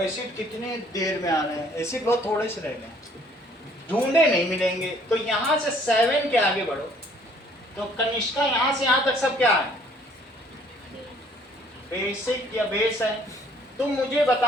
कितने देर में आना है, एसिड बहुत थोड़े से रह गए, ढूंढे नहीं मिलेंगे। तो यहां से 7 के आगे बढ़ो, तो कनिष्का यहां से यहां तक सब क्या है, बेसिक या बेस है। तुम मुझे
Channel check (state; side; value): normal; both; correlation 0.60